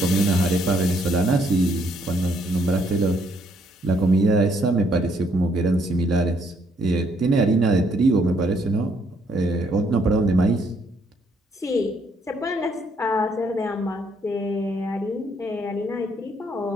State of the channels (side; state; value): both; normal; correlation 0.70